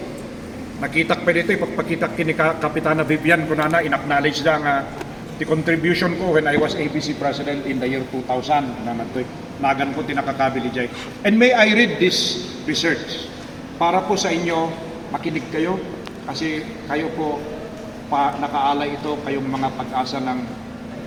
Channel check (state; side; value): identical; both; correlation 1.00